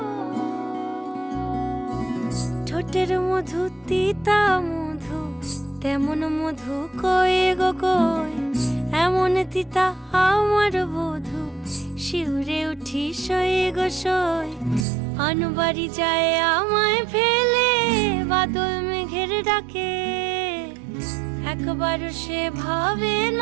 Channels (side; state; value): left; drops out; at 14.9 s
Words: ঠোঁটের মধু তিতা মধু, তেমন মধু কই গো কই, এমন তিতা আমার বধু, শিউরে উঠি সই গো সই। আনবাড়ি যায় আমায় ফেলে বাদল মেঘের ডাকে, একবার সে ভাবে